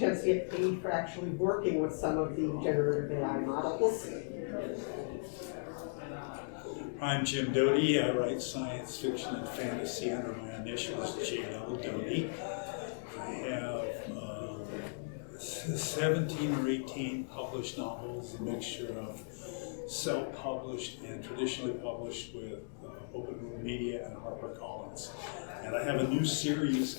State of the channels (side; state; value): right; silent; digital silence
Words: to get paid for actually working with some of the generative AI models. I'm Jim Doty. I write science fiction and fantasy under my initials, JL Doty. I have 17 or 18 published novels, a mixture of self-published and traditionally published with Open Room Media and HarperCollins. And I have a new series